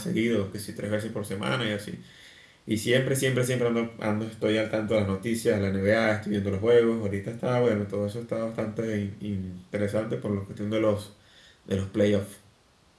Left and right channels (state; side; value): identical; both; correlation 1.00